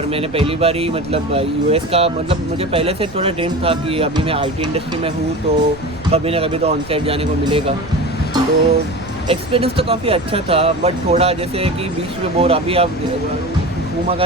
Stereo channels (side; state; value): right; noise; rumble, 18 dB below the sound